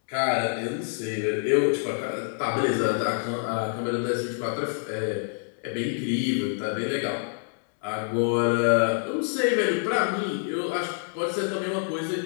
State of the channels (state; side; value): silent; right; 60 dB below the other